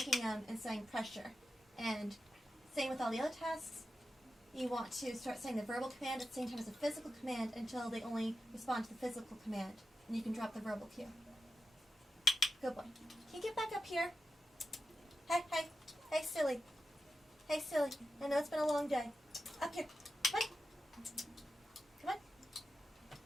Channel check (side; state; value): both; normal; correlation 0.91